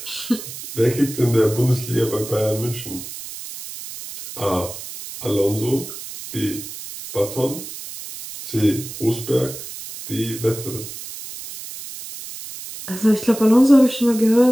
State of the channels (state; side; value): noise; right; hiss, 11 dB below the sound